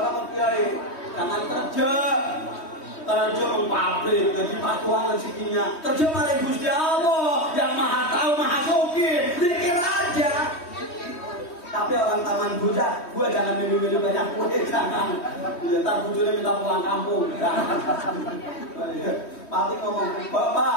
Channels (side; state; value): right; late; 3.2 ms